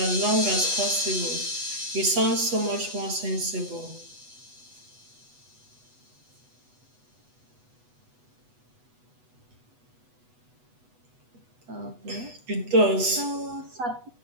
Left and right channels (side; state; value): left; late; 8.1 ms